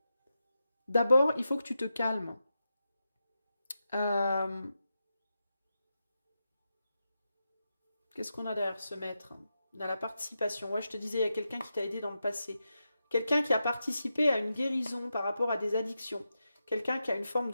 d'abord, il faut que tu te calmes. Euh, Qu'est-ce qu'on a derrière ce maître? Dans la participation. Ouais, je te disais, il y a quelqu'un qui t'a aidé dans le passé. Quelqu'un qui a participé à une guérison par rapport à des addictions. Quelqu'un qui a une forme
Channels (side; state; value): both; inverted; correlation -0.89